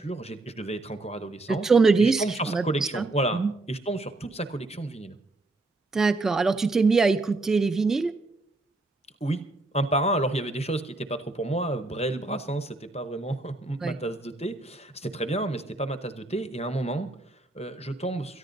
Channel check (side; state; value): left; quieter; 3.1 dB